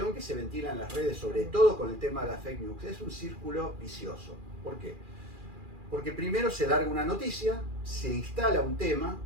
que se ventila en las redes, sobre todo con el tema de la fake news, es un círculo vicioso. ¿Por qué? Porque primero se larga una noticia, se instala un tema,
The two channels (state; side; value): late; left; 2.4 ms